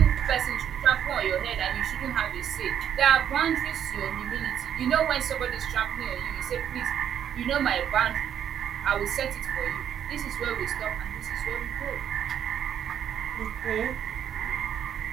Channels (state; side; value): quieter; left; 9.3 dB